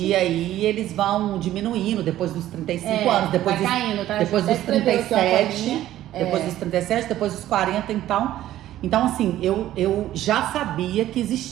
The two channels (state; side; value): quieter; left; 13.5 dB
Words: aí, eles vão diminuindo depois dos 35 anos. Depois caindo, tá? Depois dos 37, depois dos 37, depois dos 40, então... Então, assim, eu já sabia que